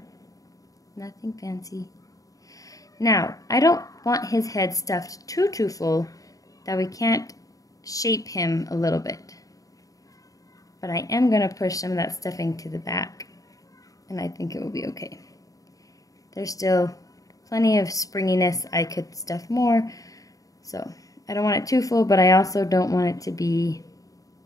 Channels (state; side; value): late; right; 0.17 ms